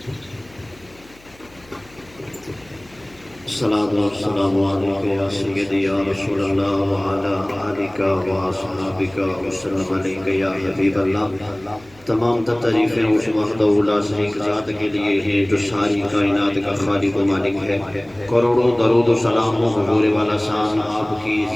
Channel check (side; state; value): left; noise; hum, 27 dB below the sound